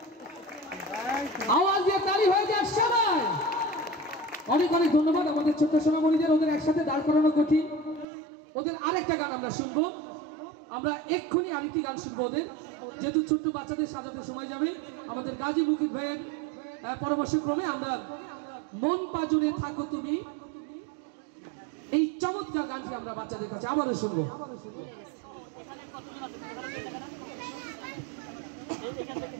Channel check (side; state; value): left; drops out; at 8.1 s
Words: আওয়াজ দিয়ে তালি হয়ে যাক সবাই। অনেক অনেক ধন্যবাদ আমাদের ছোট্ট সোনামণিদের। ওদের একসাথে দাঁড় করানো কঠিন। ওদের আরেকটা গান আমরা শুনবো। আমরা এক্ষুনি আরেকটি গান শুনবো ওদের, যেহেতু ছোট্ট বাচ্চাদের সাজাতে সময় যাবে। আমাদের গাজী মুকিত ভাইয়ের পরামর্শ ক্রমে আমরা মন পাজুরে থাকো তুমি, এই চমৎকার গানটি আমরা বাচ্চাদের কাছে আবারও শুনবো।